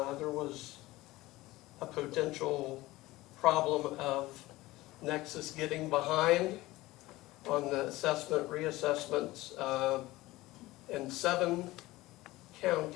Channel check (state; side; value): quieter; right; 18.6 dB